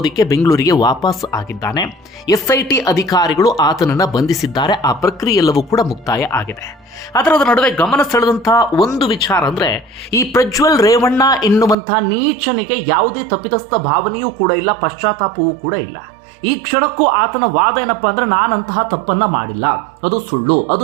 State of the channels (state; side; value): drops out; left; at 11.8 s